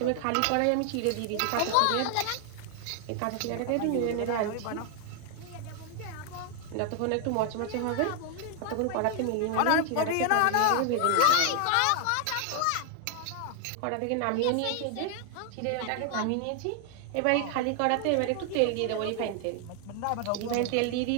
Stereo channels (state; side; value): different; both; correlation 0.00